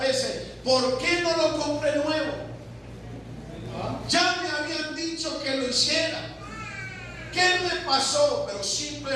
veces? ¿Por qué no lo compré nuevo? Ya me habían dicho que lo hiciera. ¿Qué me pasó? Pero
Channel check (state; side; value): identical; both; correlation 1.00